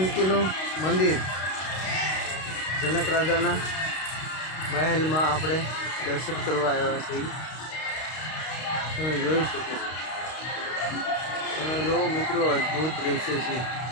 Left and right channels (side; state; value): right; late; 32 ms